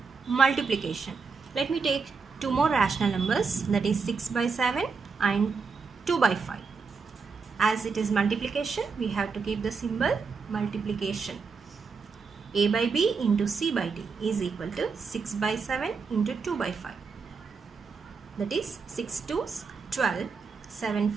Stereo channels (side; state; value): left; quieter; 5.1 dB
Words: multiplication. Let me take two more rational numbers, that is 6 by 7 and 2 by 5. As it is multiplication, we have to keep the symbol multiplication. A by b into c by d is equal to 6 by 7 into 2 by 5. That is 6 2's 12, 7